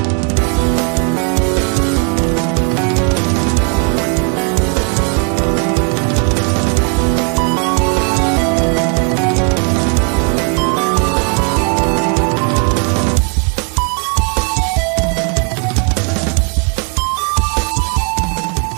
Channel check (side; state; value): left; quieter; 37.2 dB